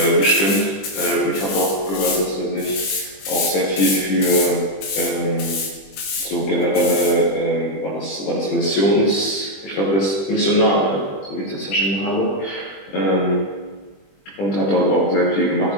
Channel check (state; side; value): late; right; 20 ms